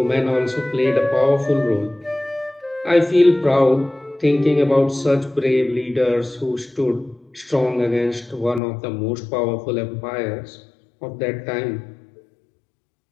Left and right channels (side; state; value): right; drops out; at 8.6 s